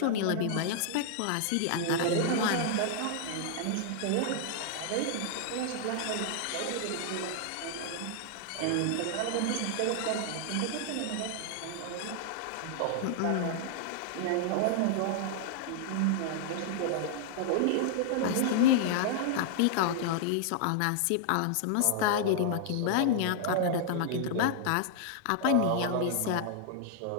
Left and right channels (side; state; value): both; different; correlation -0.01